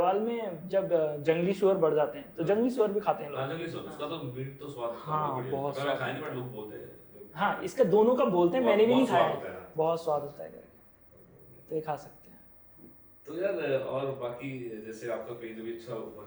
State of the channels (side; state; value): both; identical; correlation 1.00